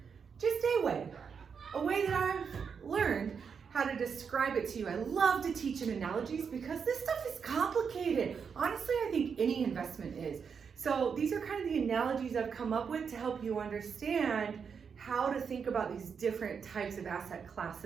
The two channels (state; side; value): quieter; left; 6.3 dB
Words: just a way that I've learned how to describe it to you. I love to teach in analogies because this stuff is complicated. Honestly, I think any investment is. So these are kind of the analogies I've come up with to help you understand how to think about these different types of asset